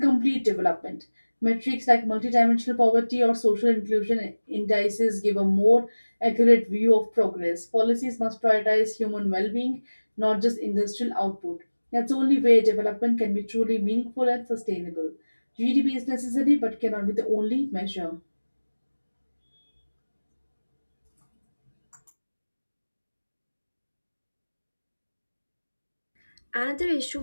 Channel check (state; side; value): inverted; both; correlation -1.00